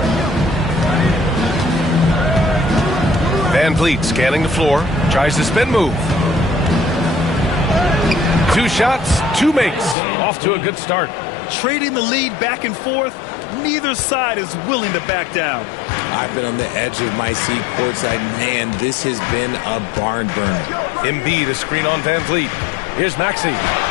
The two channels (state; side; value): drops out; right; at 10.0 s